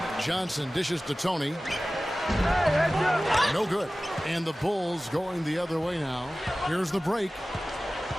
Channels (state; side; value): normal; both; correlation 0.97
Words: Johnson dishes to Tony. No good. And the Bulls going the other way now. Here's the break.